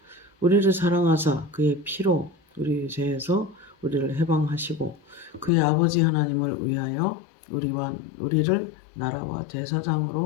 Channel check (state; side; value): drops out; right; at 5.5 s